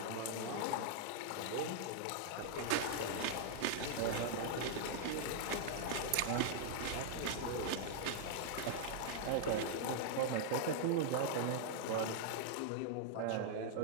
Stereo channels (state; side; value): different; both; correlation -0.01